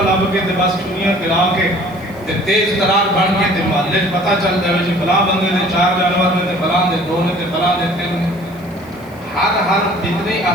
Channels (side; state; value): right; noise; hiss, 27 dB below the sound